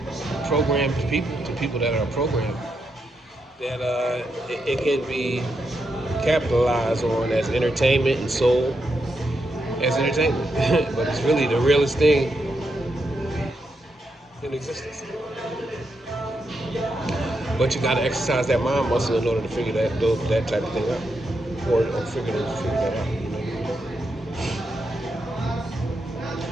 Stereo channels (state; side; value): normal; both; correlation 0.83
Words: programmed people that are programmed, that it can be capitalized on as entertainment and sold as entertainment. But it's really the realest thing in existence. But you got to exercise that mind muscle in order to figure that type of thing out, or figure that out.